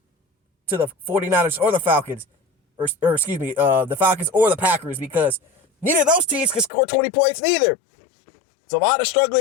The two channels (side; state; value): right; drops out; at 6.7 s